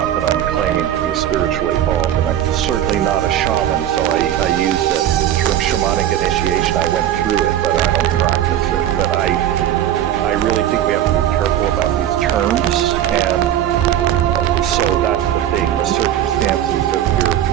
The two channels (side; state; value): left; quieter; 11.3 dB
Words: that I'm claiming to be spiritually evolved, and I'm certainly not a shaman, so I use the term shamanic initiation. I went through it, but I don't practice it. But I really think we have to be careful about these terms, and so that's the thing. The circumstances of your